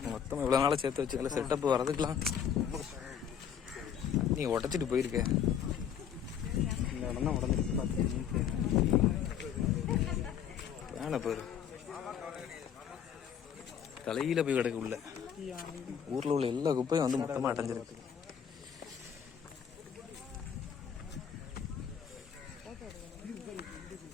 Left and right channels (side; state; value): right; quieter; 8.3 dB